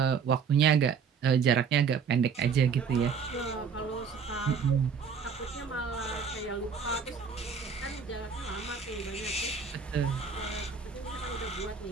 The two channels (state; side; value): quieter; left; 6.2 dB